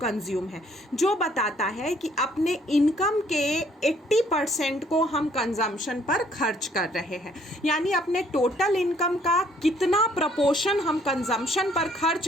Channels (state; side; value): normal; both; correlation 0.63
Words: है, जो बताता है कि अपने इनकम के 80% को हम कंजम्पशन पर खर्च कर रहे हैं। यानी अपने टोटल इनकम का कितना प्रपोर्शन हम कंजम्पशन पर